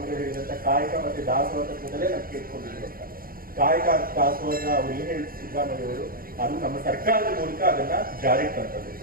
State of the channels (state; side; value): late; left; 0.42 ms